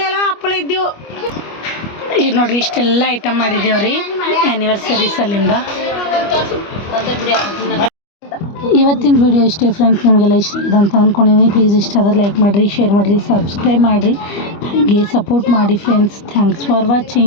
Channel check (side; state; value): right; late; 25 ms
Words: ಇದ್ದೆವು. ಈಗ ನೋಡ್ರಿ ಇಷ್ಟೆಲ್ಲ ಐಟಮ್ ಮಾಡಿದ್ದೇವ್ರಿ ಆ್ಯನಿವರ್ಸರಿ ಸಲಿಂದ. ಇವತ್ತಿನ ವಿಡಿಯೋ ಇಷ್ಟೇ ಫ್ರೆಂಡ್ಸ್. ನಿಮಗೆಲ್ಲ ಇಷ್ಟ ಆಗಿದೆ ಅಂತ ಅಂದ್ಕೊಂಡಿದ್ದೀನಿ. ಪ್ಲೀಸ್ ಇಷ್ಟ ಆದರೆ ಲೈಕ್ ಮಾಡಿರಿ, ಶೇರ್ ಮಾಡಿರಿ, ಸಬ್ಸ್ಕ್ರೈಬ್ ಮಾಡಿರಿ, ಹಾಗೆ ಸಪೋರ್ಟ್ ಮಾಡಿ ಫ್ರೆಂಡ್ಸ್. Thanks for